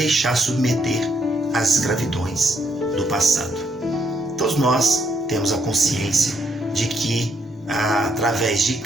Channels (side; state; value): both; normal; correlation 0.73